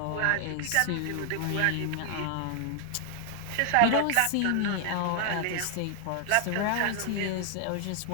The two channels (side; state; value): both; different; correlation 0.00